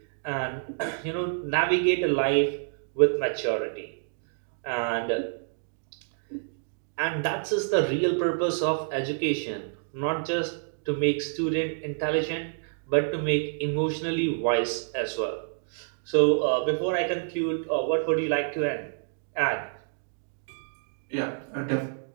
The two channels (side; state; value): left; silent; digital silence